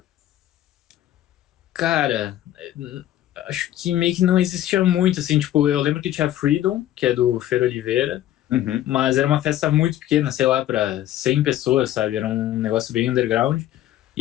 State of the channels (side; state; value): right; quieter; 13.0 dB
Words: Cara, acho que meio que não existia muito, assim, tipo, eu lembro que tinha Freedom, que é do Fer Oliveira, Uhum. mas era uma festa muito pequena, sei lá, para 100 pessoas, sabe? Era um negócio bem underground. E